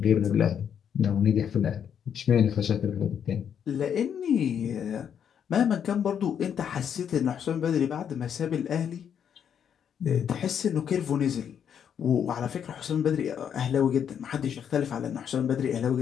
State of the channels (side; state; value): right; quieter; 8.3 dB